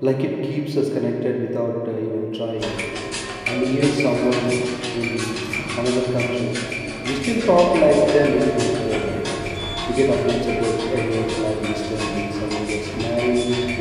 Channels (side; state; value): both; identical; correlation 1.00